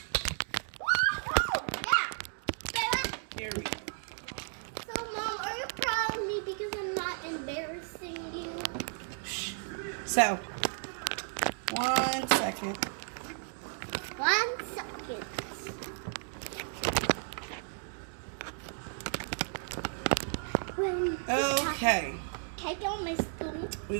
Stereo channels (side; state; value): left; silent; 55 dB below the other